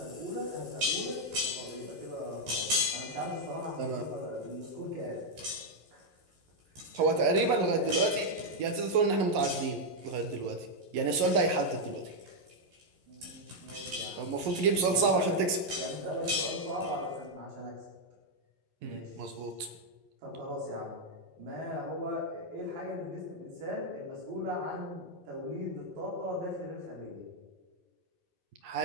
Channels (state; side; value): late; left; 11 ms